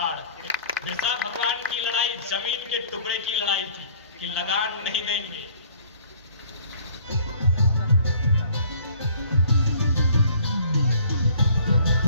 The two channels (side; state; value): both; inverted; correlation -0.54